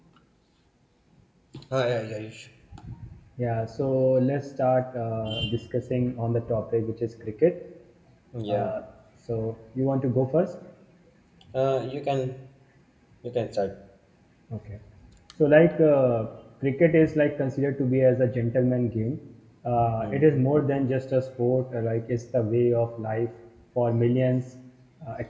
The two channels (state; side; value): identical; both; correlation 1.00